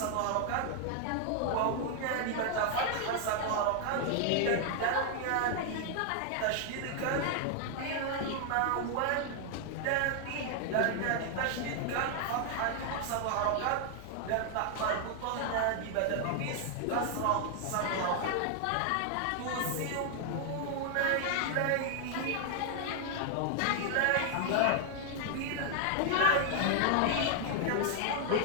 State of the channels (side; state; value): both; different; correlation 0.00